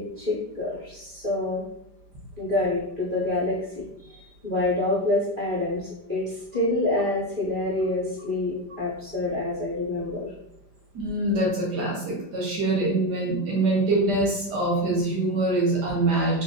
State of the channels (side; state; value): left; late; 5.0 ms